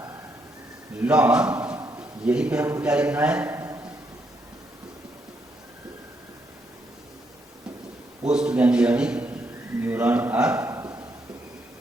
long, यही पे हमको क्या लिखना है, post ganglionic neuron are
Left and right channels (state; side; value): normal; both; correlation 0.77